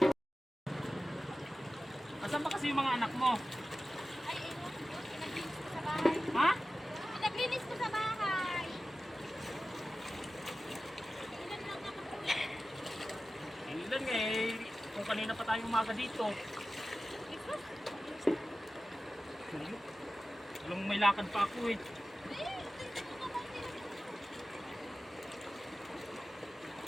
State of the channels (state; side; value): normal; both; correlation 0.95